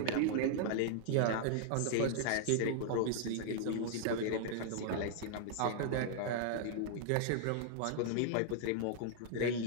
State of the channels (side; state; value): both; different; correlation -0.01